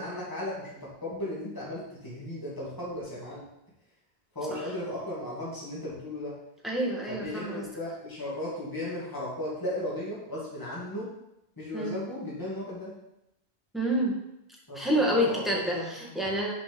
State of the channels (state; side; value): normal; both; correlation 0.19